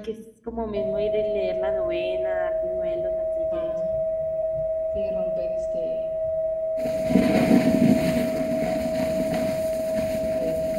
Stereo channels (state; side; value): identical; both; correlation 1.00